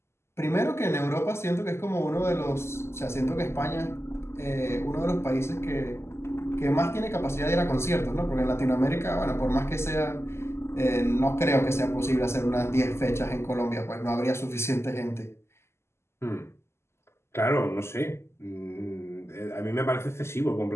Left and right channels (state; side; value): late; right; 0.13 ms